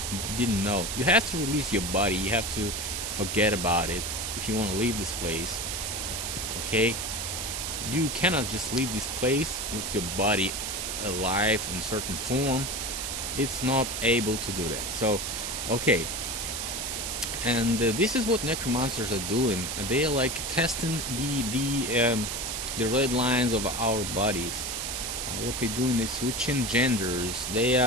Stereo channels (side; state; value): right; noise; hiss, 3 dB below the sound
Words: didn't know. You have to release your body. You have to forget about it if you want to leave this place. Okay? You cannot just leave this place with your body alive in certain form. It's not able to do that. So, okay. And this is what necromancers are doing. They are testing the red lines of our bodies. What they're doing is switching genders. They